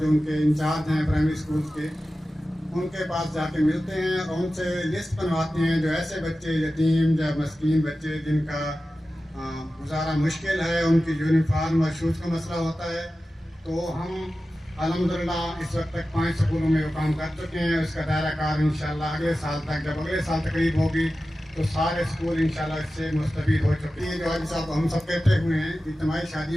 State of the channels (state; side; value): normal; both; correlation 0.94